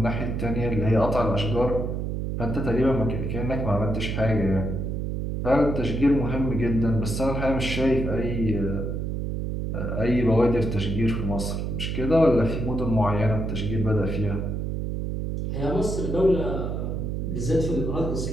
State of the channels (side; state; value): right; noise; hum, 2 dB below the sound